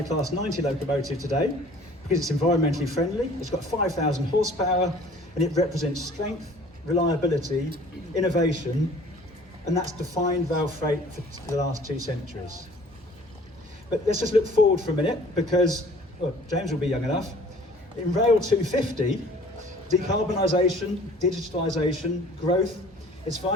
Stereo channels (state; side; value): normal; both; correlation 0.51